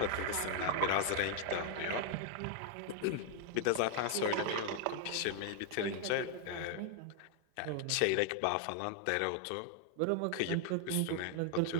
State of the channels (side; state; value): both; different; correlation 0.00